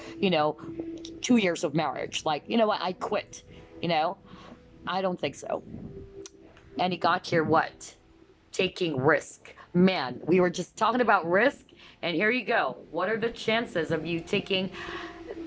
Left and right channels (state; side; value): identical; both; correlation 1.00